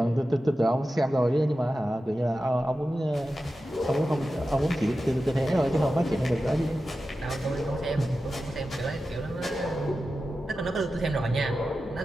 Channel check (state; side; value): normal; both; correlation 0.93